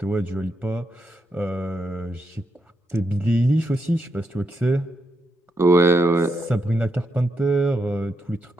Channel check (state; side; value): normal; both; correlation 0.82